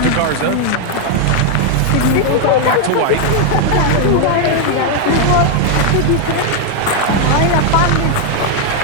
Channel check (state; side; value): different; both; correlation 0.00